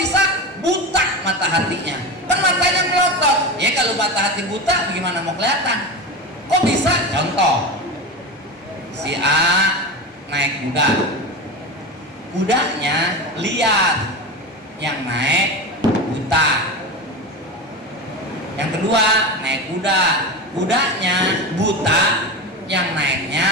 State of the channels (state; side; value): normal; both; correlation 0.24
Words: Buta mata hatinya. Kan matanya melotot. Ya kalau mata hati buta, gimana mau kelihatan? Kok bisa? Contoh, si A naik kuda, kudanya liar, yang naik buta. Yang kedua naik kuda, kudanya buta, yang